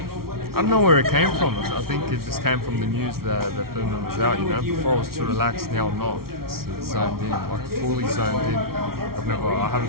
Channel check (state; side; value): late; left; 0.94 ms